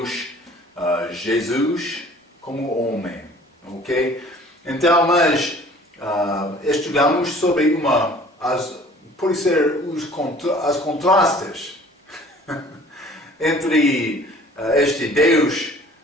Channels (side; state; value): both; normal; correlation 0.50